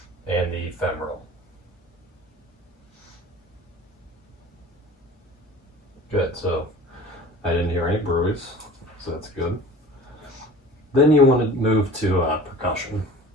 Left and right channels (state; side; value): normal; both; correlation 0.42